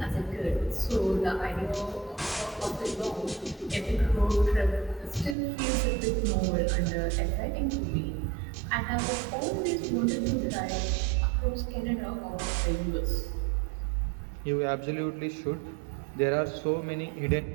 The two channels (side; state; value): left; drops out; at 5.4 s